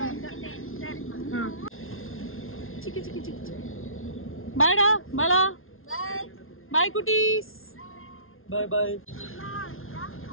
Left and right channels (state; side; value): late; right; 0.60 ms